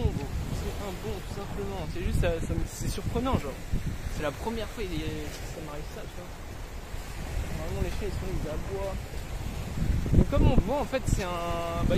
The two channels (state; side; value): identical; both; correlation 1.00